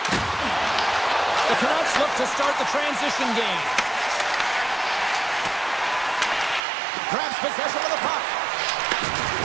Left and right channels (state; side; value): drops out; left; at 6.6 s